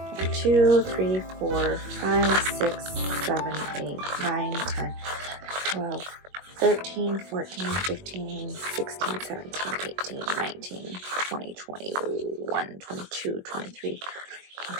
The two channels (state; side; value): late; left; 21 ms